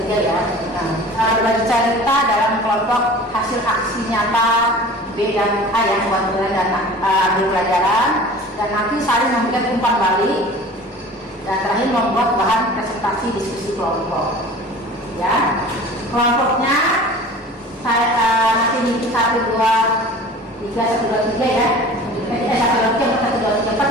ya. Nah, berbagi cerita dalam kelompok hasil aksi nyata B dan A ya, buat dan ambil pelajaran, dan nanti saling memberikan umpan balik, dan terakhir membuat bahan presentasi diskusi kelompok ya. Kelompoknya saya nanti nih 1, 2, 3, 1, 2, 3 ya. 1, 2, 3, 1, 2, 3,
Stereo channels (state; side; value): normal; both; correlation 0.42